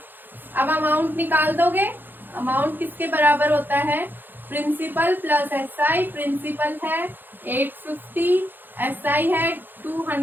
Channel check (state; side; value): late; left; 0.093 ms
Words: अब अमाउंट निकाल दोगे, अमाउंट किसके बराबर होता है, प्रिंसिपल प्लस SI। प्रिंसिपल है 850, SI है